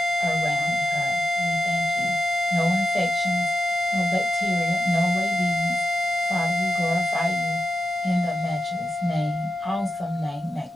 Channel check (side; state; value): both; normal; correlation 0.88